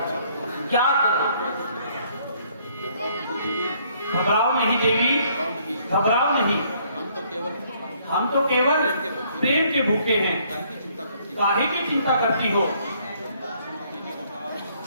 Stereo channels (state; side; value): inverted; both; correlation -0.65